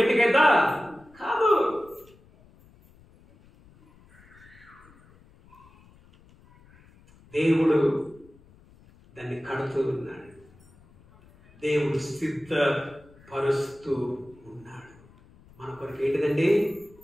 కాదు. దేవుడు దాన్ని కడుతూ ఉన్నాడు. దేవుడు సిద్ధపరుస్తూ ఉన్నాడు. మన కొరకు ఏంటిదండి?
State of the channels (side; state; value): left; noise; rumble, 27 dB below the sound